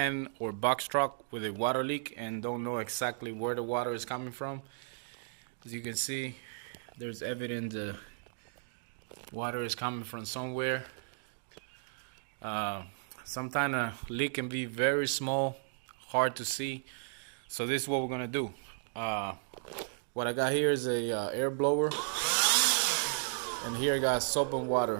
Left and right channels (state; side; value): silent; left; digital silence